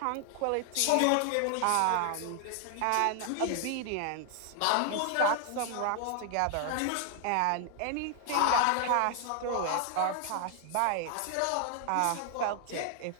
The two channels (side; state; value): both; different; correlation 0.00